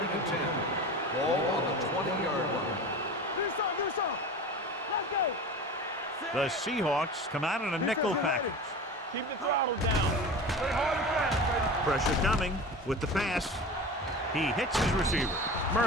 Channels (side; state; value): both; normal; correlation 0.32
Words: and 10. Ball on the 20-yard line. Do some. Let's go. The Seahawks come out in a nickel package. Keep the throttle down. Play hard and fast, baby. Pressure coming with the pass. He hits his receiver.